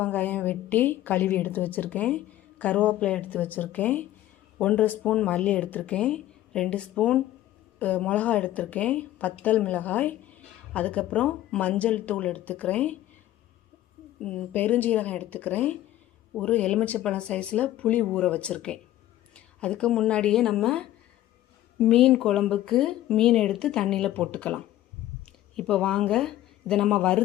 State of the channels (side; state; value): right; quieter; 14.0 dB